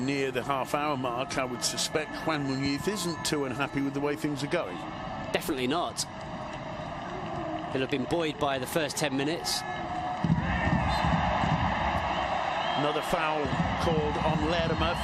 the half-hour mark, I would suspect Juan Muñiz isn't too unhappy with the way things are going. Definitely not. He'll have been buoyed by the first 10 minutes. Another foul called on Lerma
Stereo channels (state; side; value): identical; both; correlation 1.00